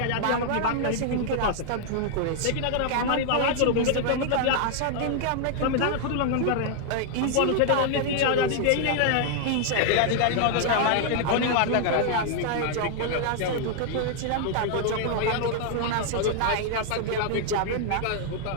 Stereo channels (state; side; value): different; both; correlation 0.00